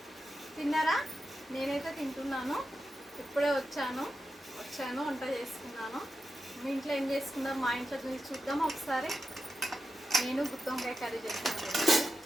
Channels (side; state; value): both; normal; correlation 0.90